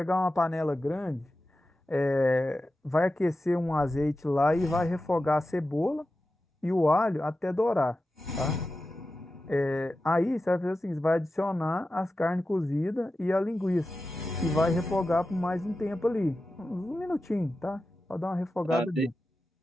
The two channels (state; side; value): normal; both; correlation 0.93